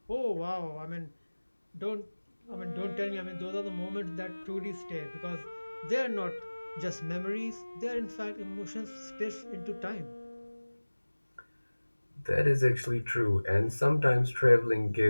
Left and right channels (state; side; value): inverted; both; correlation -1.00